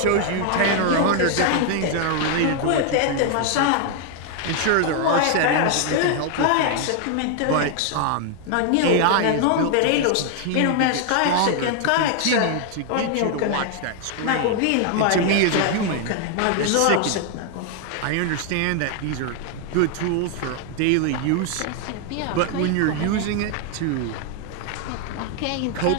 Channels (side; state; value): both; different; correlation 0.01